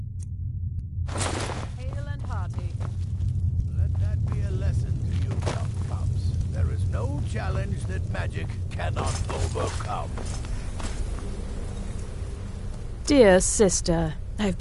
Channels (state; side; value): identical; both; correlation 1.00